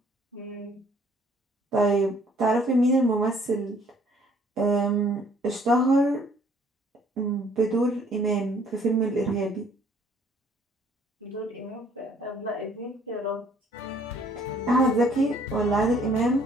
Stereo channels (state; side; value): normal; both; correlation 0.60